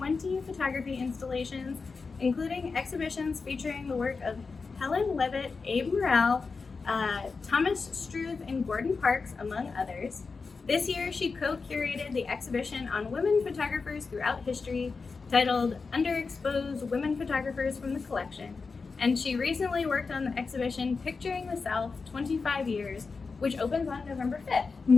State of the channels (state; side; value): quieter; right; 4.6 dB